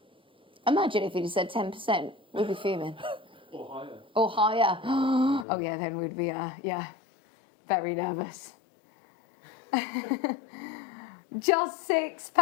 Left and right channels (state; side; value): drops out; right; at 5.5 s